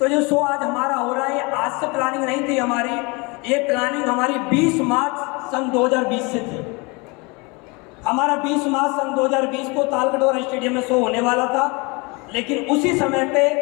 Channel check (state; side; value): quieter; right; 27.9 dB